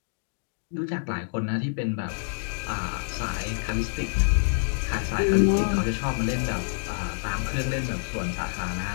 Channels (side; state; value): right; silent; digital silence